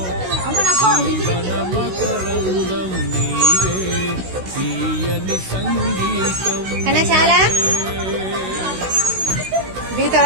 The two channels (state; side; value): late; left; 16 ms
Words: జీవనమకరంగం నీవే తీయని సంగీతం కన్నా చాలా